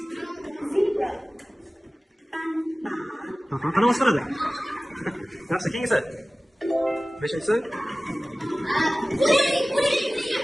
Aha, qanaqa ovoz chiqaradi? Yaxshi, keyingisi. Beshinchisi.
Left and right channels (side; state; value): both; normal; correlation 0.97